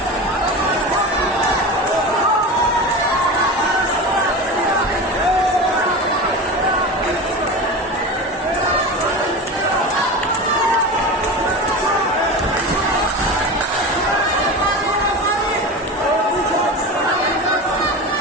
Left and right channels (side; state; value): both; normal; correlation 0.27